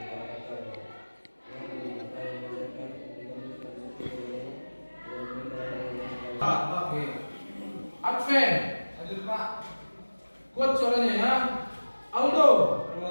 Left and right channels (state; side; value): inverted; both; correlation -1.00